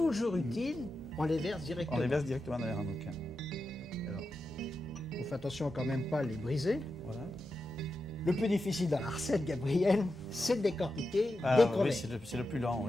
utile. On les verse directement. On les verse directement dans les ramequins. Alors, on fait attention quand même pas à les briser. Voilà. Le plus difficile dans la recette, Gabriel, c'est de décortiquer Ah, des oui, crevettes. c'est le plus lent,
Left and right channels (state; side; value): normal; both; correlation 0.89